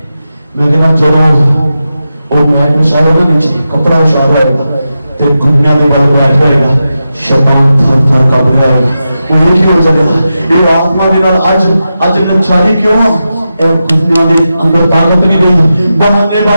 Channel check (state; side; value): inverted; both; correlation -0.90